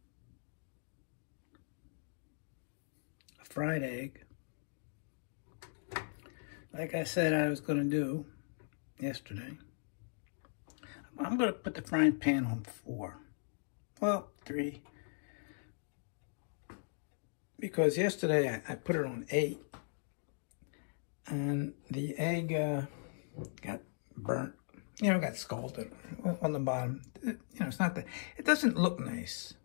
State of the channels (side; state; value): right; silent; digital silence